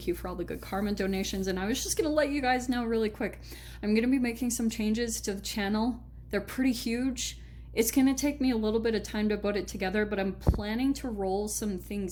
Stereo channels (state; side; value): identical; both; correlation 1.00